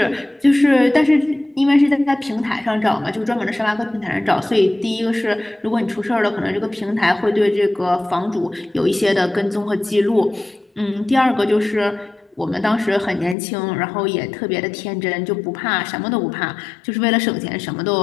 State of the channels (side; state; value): right; drops out; at 13.4 s